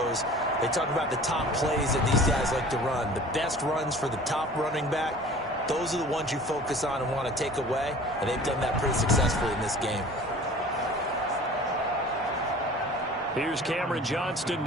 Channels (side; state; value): both; normal; correlation 0.44